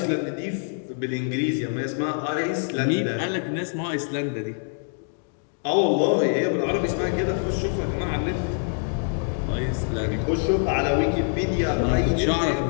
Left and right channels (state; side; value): silent; right; 58 dB below the other